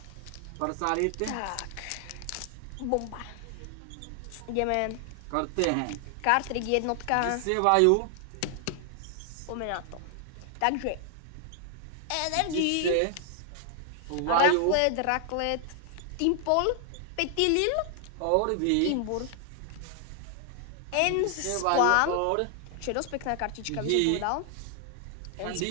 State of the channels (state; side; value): different; both; correlation 0.00